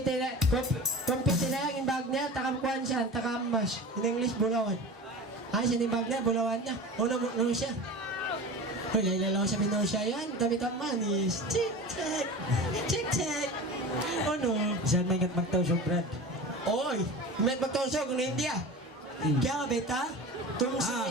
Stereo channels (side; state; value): both; normal; correlation 0.33